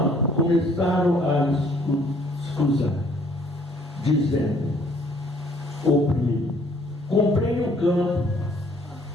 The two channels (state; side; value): normal; both; correlation 0.61